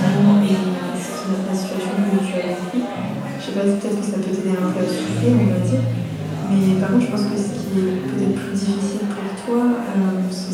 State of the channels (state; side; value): identical; both; correlation 1.00